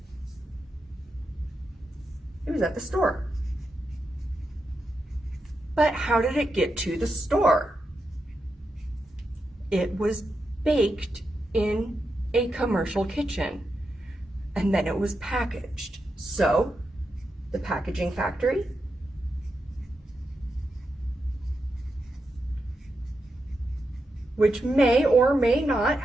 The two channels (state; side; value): normal; both; correlation 0.86